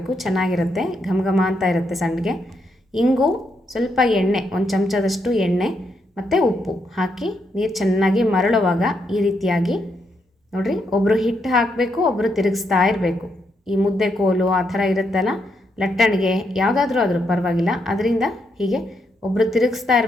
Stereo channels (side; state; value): both; normal; correlation 0.79